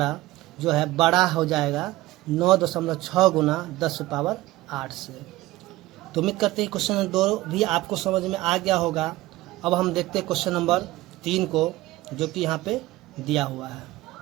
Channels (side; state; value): left; quieter; 17.9 dB